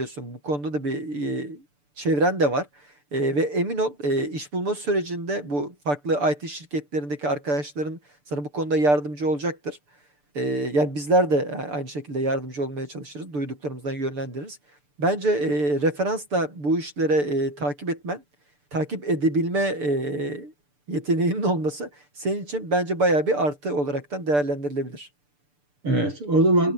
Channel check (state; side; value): late; left; 6.8 ms